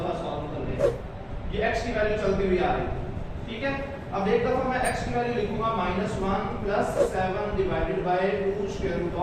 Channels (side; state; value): both; identical; correlation 1.00